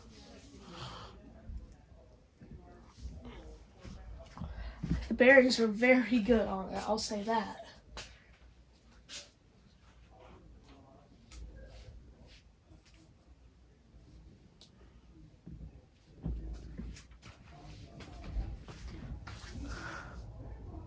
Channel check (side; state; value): both; identical; correlation 1.00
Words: The bearings are very good on it, I'll say that.